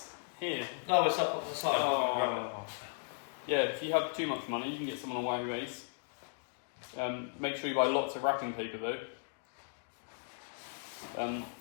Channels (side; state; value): right; silent; digital silence